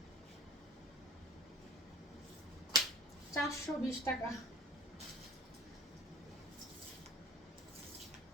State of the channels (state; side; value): normal; both; correlation 0.44